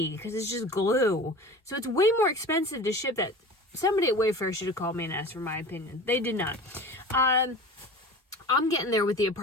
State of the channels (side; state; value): both; normal; correlation 0.37